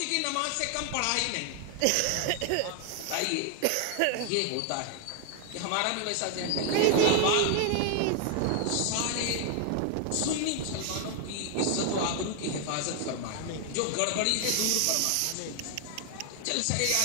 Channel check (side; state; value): both; different; correlation 0.00